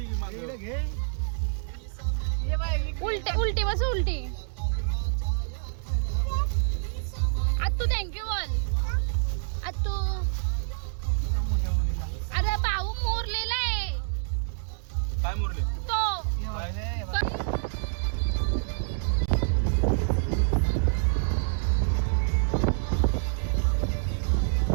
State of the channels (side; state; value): left; silent; digital silence